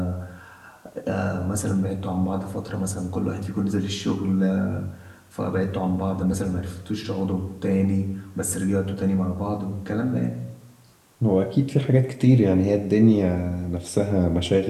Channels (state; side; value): identical; both; correlation 1.00